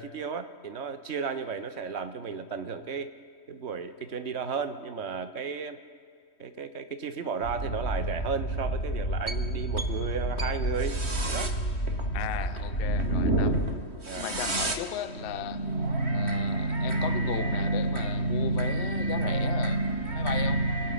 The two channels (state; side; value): late; right; 3.1 ms